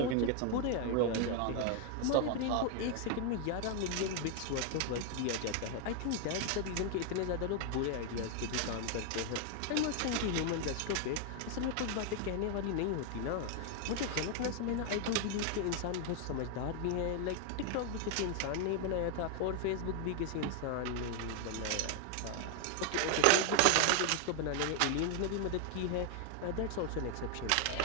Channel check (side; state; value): both; different; correlation 0.01